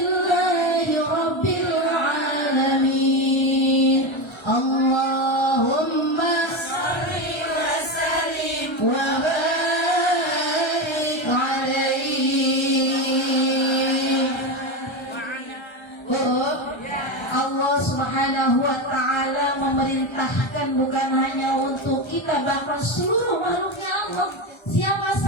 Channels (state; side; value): late; right; 1.3 ms